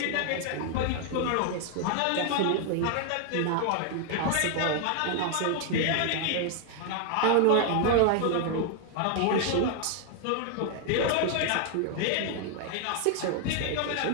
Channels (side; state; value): both; different; correlation 0.00